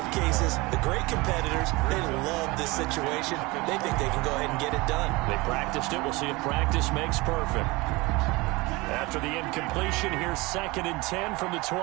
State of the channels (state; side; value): quieter; left; 23.0 dB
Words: of cases, the great competitors, they love this situation. They think they can go ahead and get it done. They practiced it. We'll see if practice makes perfect. After the incompletion, here's 2nd and 10 from the